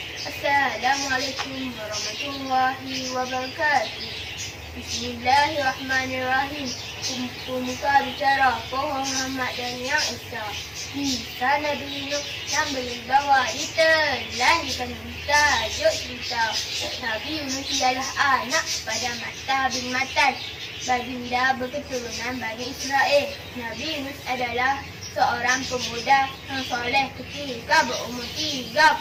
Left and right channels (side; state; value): both; identical; correlation 1.00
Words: Assalamualaikum warahmatullahi wabarakatuh. Bismillahirrahmanirrahim. Pemuka bicara pohon Muhammad dan yang Esa. Kisah Nabi Nuh yang berbawa ditelan tajuk cerita. Nabi Nuh ialah anak pada Matta bin Matan, baginda berketurunan Bani Israel. Nabi Nuh adalah seorang pemuda yang soleh ketika berumur 30